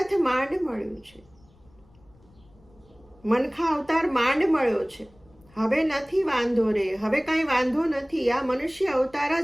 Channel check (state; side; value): noise; left; rumble, 30 dB below the sound